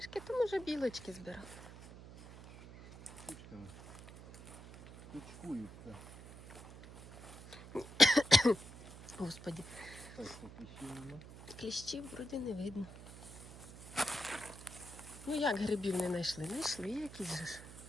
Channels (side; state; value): right; noise; hum, 15 dB below the sound